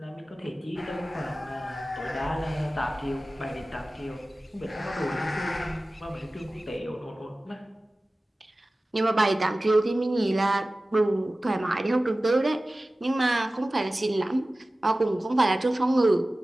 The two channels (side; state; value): both; normal; correlation 0.97